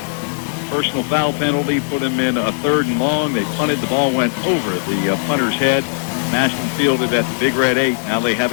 personal foul penalty put him in a 3rd and long. They punted. The ball went over the punter's head. Massillon fielded at the Big Red 8. Now they have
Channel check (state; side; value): silent; right; digital silence